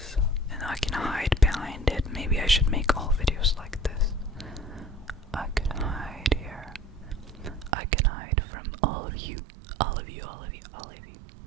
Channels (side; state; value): left; drops out; at 7.8 s